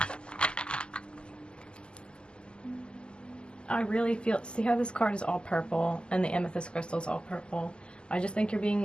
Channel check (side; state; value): right; late; 0.049 ms